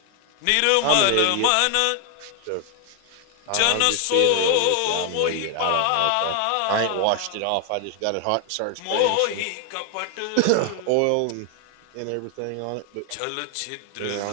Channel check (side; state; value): both; different; correlation 0.00